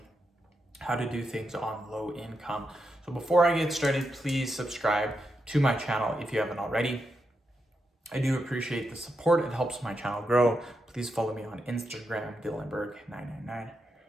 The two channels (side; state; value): both; normal; correlation 0.85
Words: how to do things on low income. So before I get started, please subscribe to my channel if you haven't already. I do appreciate the support. It helps my channel grow. Please follow me on Instagram, Dylanberg999.